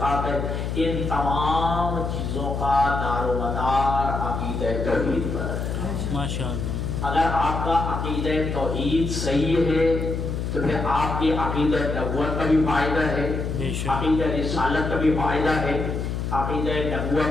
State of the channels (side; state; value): left; noise; hum, 3 dB below the sound